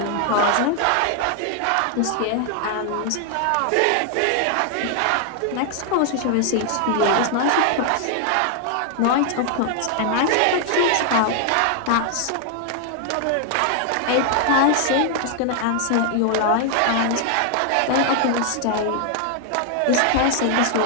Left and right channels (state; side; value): different; both; correlation 0.00